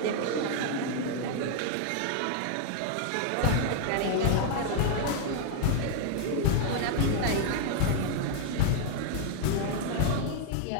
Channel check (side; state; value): both; different; correlation 0.00